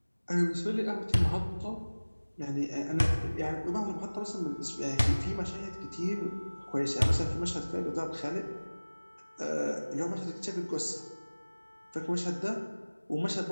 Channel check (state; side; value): inverted; both; correlation -1.00